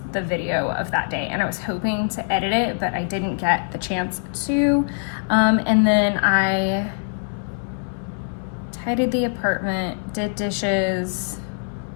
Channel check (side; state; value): right; silent; 63 dB below the other